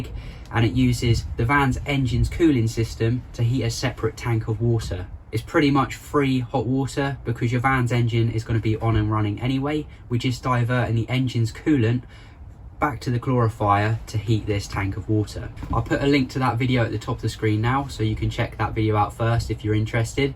and it uses the van's engine's cooling system to heat a separate tank of water. It's pretty much free hot water because your van's engine is going to be on and running anyway. We're just diverting the engine's coolant back to the glorifier to heat this tank of water. I'll put a link to that video at the top of the screen now, so you can check that video out first if you're interested.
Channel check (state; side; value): identical; both; correlation 1.00